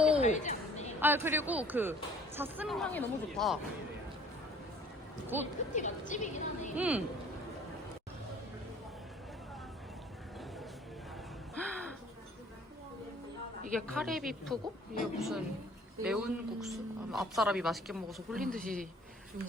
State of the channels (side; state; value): both; normal; correlation 0.54